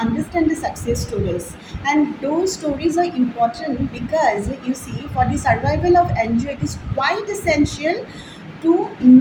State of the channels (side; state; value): both; identical; correlation 1.00